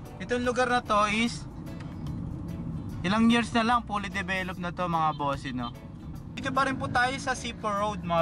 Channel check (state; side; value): identical; both; correlation 1.00